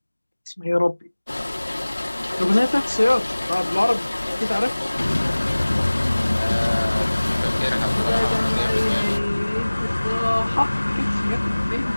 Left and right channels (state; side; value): inverted; both; correlation -1.00